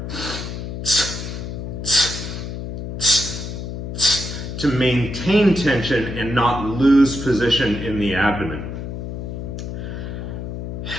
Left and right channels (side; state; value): left; noise; hum, 6 dB below the sound